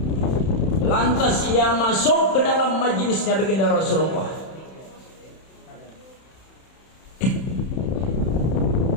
Lantas ia masuk ke dalam majelisnya baginda Rasulullah.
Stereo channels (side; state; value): right; late; 31 ms